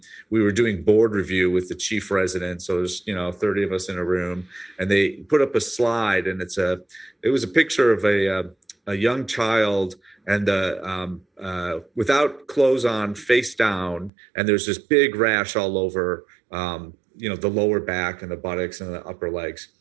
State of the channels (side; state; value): left; drops out; at 14.1 s